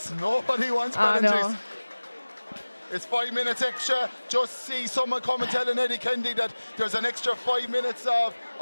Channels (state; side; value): inverted; both; correlation -1.00